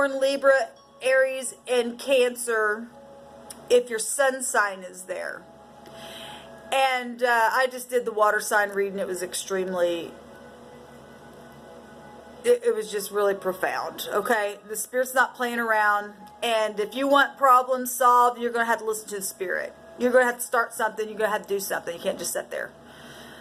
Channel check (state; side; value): identical; both; correlation 1.00